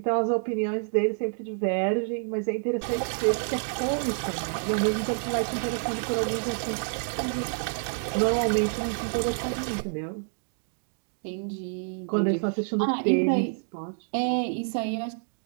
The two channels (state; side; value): silent; left; 59 dB below the other